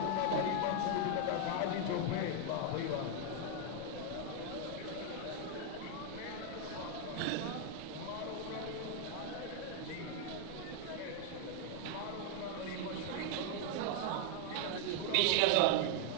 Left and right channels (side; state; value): both; different; correlation 0.00